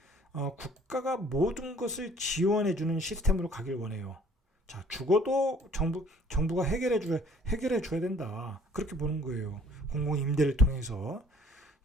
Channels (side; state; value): both; normal; correlation 0.56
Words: 국가가 모든 것을 지원해주는 시스템으로 가길 원해요. 자, 주거도 정부가 해결해 줘야 된다. 그렇게 보는 거예요. 공공 임대를 통해서.